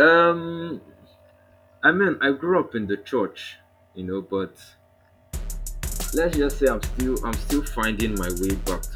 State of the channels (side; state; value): both; identical; correlation 1.00